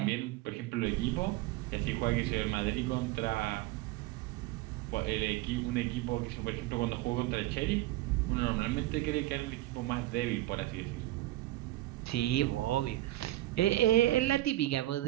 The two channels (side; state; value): left; quieter; 16.5 dB